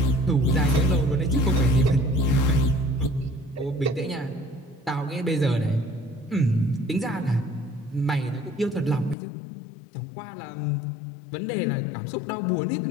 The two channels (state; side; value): drops out; right; at 9.2 s